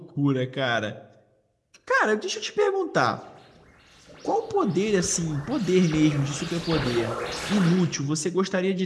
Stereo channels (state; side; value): identical; both; correlation 1.00